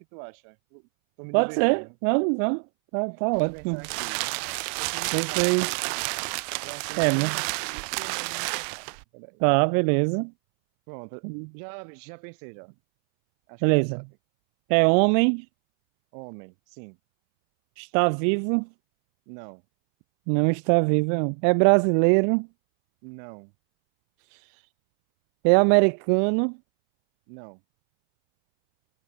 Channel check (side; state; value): left; silent; 62 dB below the other